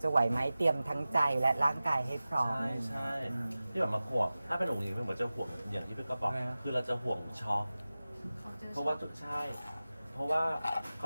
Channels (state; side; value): inverted; both; correlation -0.96